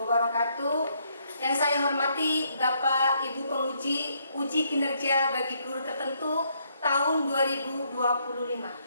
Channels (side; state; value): both; inverted; correlation -0.72